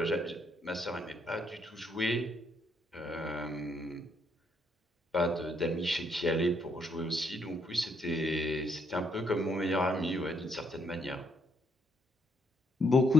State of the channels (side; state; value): both; normal; correlation 0.72